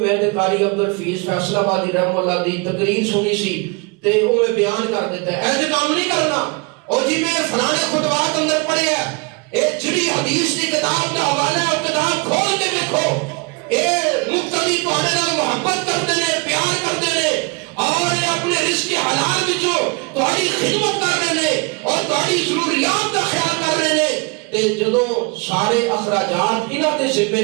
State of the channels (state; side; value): quieter; left; 30.3 dB